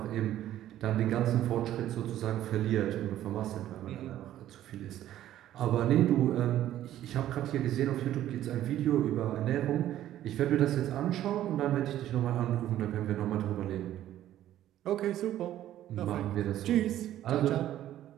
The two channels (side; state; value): left; quieter; 12.6 dB